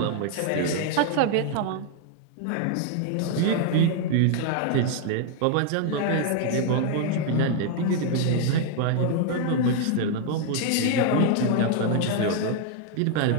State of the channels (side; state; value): both; different; correlation 0.00